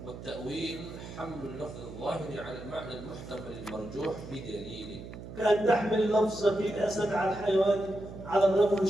والتأويل حمل اللفظ الظاهر على المعنى المحتمل المرجوح بدليل، كأن تحمل لفظة الأسد على الحيوان على الرجل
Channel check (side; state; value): right; noise; hum, 12 dB below the sound